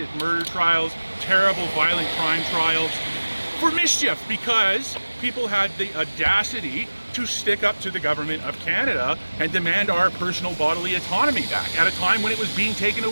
murder trials, terrible violent crime trials, for mischief, because people had the audacity to stick up to the government of Canada and demand our personal bodily autonomy back at a time when it was being taken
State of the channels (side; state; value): both; inverted; correlation -1.00